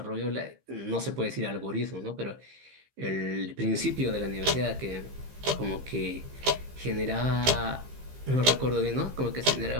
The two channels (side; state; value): left; late; 15 ms